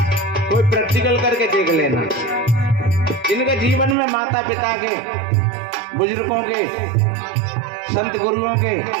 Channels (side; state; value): left; drops out; at 4.0 s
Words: कोई प्रैक्टिकल करके देख लेना। जिनके जीवन में माता पिता के, बुजुर्गों के, संत गुरुओं के